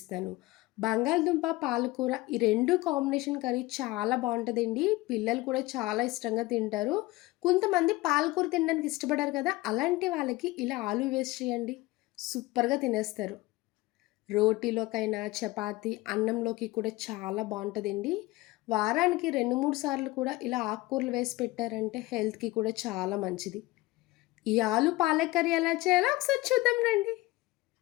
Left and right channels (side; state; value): right; quieter; 19.8 dB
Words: బంగాళదుంప, పాలకూర ఈ 2 కాంబినేషన్ కర్రీ చాలా బావుంటదండి. పిల్లలు కూడా చాలా ఇష్టంగా తింటారు. కొంతమంది పాలకూర తినడానికి ఇష్టపడరు కదా! అలాంటి వాళ్ళకి ఇలా ఆలు వేసి చేయండి. సూపర్‌గా తినేస్తారు. రోటీలోకైనా, చపాతీ, అన్నంలోకి కూడా చాలా బావుంటదండి. వారానికి 2, 3 సార్లు కూడా ఇలా ఆకుకూరలు వేసి పెట్టారంటే హెల్త్‌కి కూడా చాలా మంచిది. ఈ ఆలు పాలక్ కర్రీ ఎలా చేయాలో ఒకసారి చూద్దాం రండి.